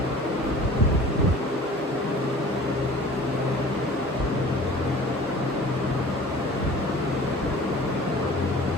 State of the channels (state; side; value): normal; both; correlation 0.44